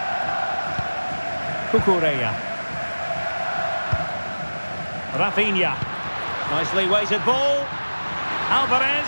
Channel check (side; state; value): both; inverted; correlation -1.00